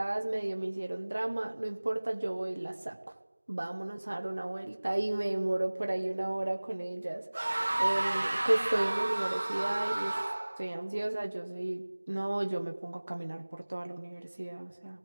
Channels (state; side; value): inverted; both; correlation -1.00